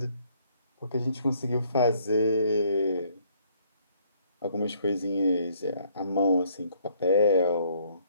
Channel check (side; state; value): both; inverted; correlation -0.65